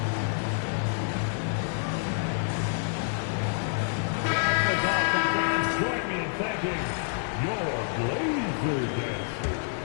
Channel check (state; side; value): silent; right; digital silence